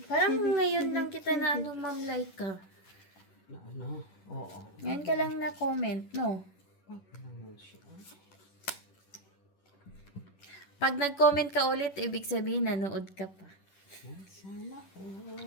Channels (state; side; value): late; right; 10 ms